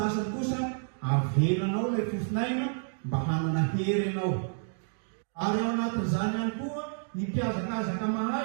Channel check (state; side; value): silent; left; digital silence